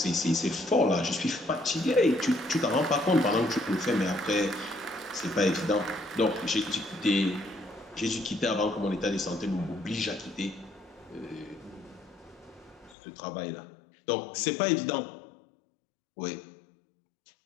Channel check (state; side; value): drops out; right; at 13.0 s